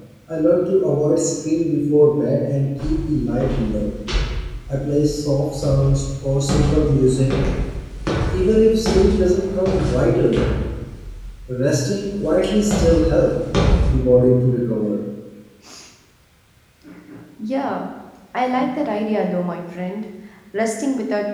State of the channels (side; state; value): both; identical; correlation 1.00